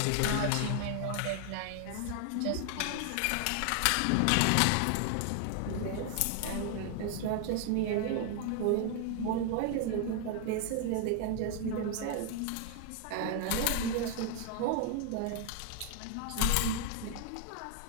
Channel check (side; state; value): both; different; correlation 0.00